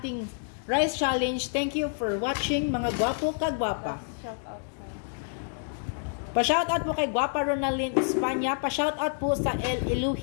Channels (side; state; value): right; silent; digital silence